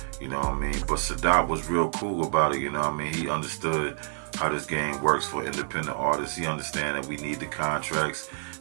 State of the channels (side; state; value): left; silent; 55 dB below the other